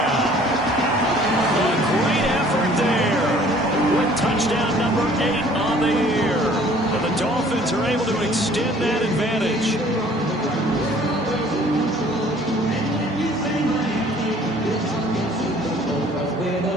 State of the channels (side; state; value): both; normal; correlation 0.54